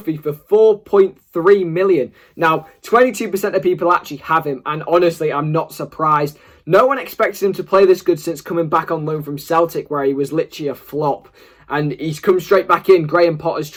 for 4.3 million. Now, 22% of people actually have him, and honestly, I'm not surprised. No one expected him to play this good since coming back on loan from Celtic, where he was literally a flop. And he's come straight back in. Graham Potter's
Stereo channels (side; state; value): both; identical; correlation 1.00